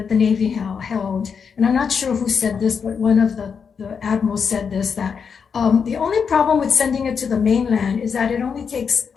the Navy held, and I'm not sure who said this, but one of the admirals said this, that the only problem with sending it to the mainland is that it only takes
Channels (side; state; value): right; quieter; 6.3 dB